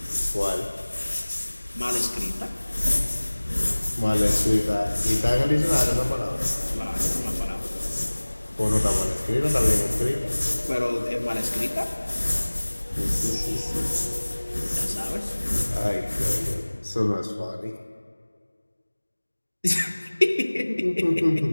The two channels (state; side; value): inverted; both; correlation -1.00